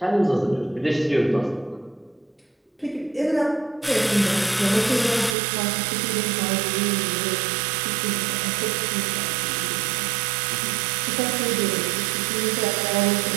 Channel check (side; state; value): left; drops out; at 5.4 s